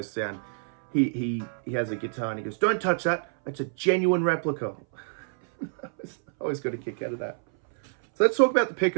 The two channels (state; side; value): silent; left; 59 dB below the other